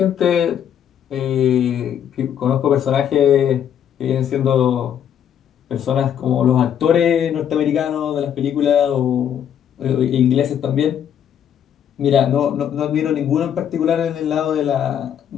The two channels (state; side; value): quieter; right; 9.2 dB